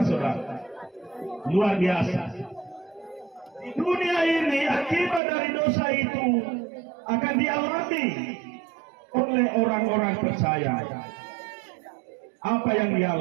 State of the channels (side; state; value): left; drops out; at 5.2 s